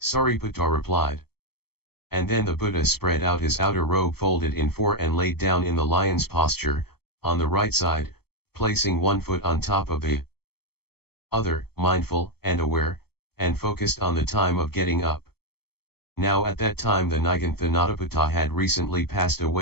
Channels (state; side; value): late; right; 0.96 ms